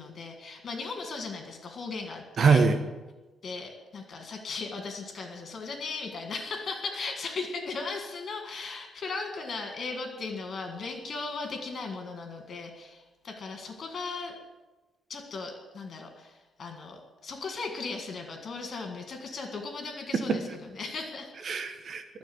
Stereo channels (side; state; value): both; normal; correlation 0.78